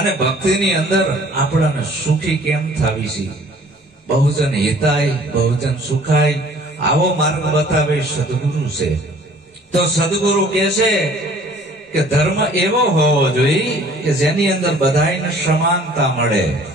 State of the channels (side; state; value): both; normal; correlation 0.53